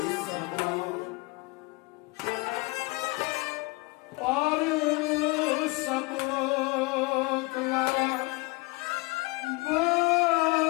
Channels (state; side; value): quieter; right; 25.6 dB